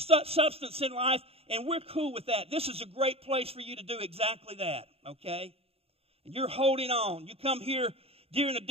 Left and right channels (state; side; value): late; left; 0.28 ms